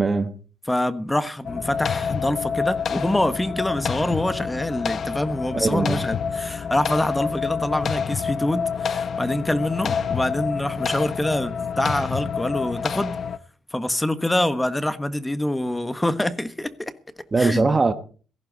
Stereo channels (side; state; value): both; normal; correlation 0.92